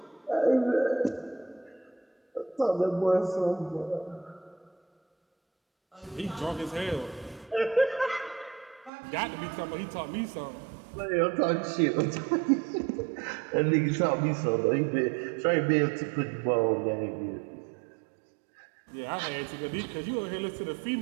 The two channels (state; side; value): drops out; left; at 8.9 s